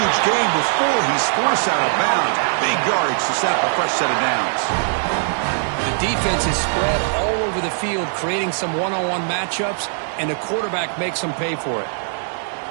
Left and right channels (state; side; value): silent; left; digital silence